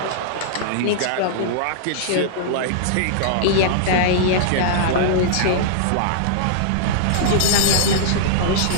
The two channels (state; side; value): different; both; correlation -0.02